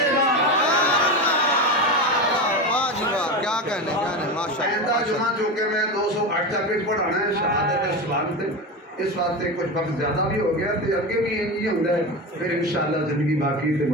گا واہ جی واہ کیا کہنے ماشاء آئندہ اللہ جمعہ جو کہ میں 208 چیپٹر پڑھانا ہے شہادت اسلام سے اس واسطے کچھ وقت زیادہ بھی ہو گیا تو اگے بھی یہ ہوتا ہے پھر انشاءاللہ زندگی باقی تے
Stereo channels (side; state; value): both; normal; correlation 0.21